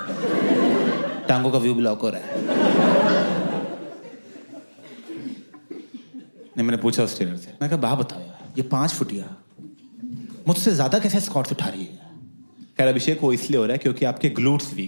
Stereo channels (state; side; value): inverted; both; correlation -1.00